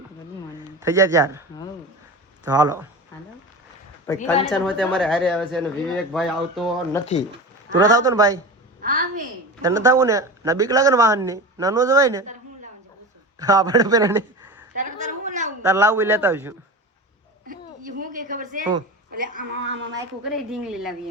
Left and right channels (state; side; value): normal; both; correlation 0.28